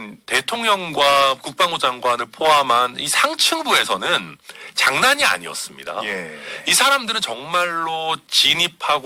대통령과 국방부 장관을 포함한 이 상층부에서는 장난이 아니었습니다. 이 사람들은 정말로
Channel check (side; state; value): both; identical; correlation 1.00